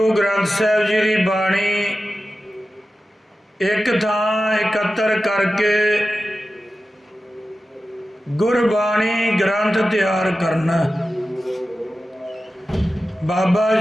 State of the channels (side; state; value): both; normal; correlation 0.94